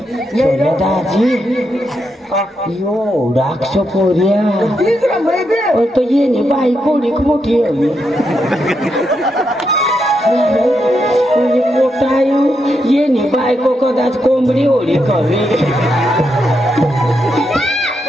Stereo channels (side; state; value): both; normal; correlation 0.82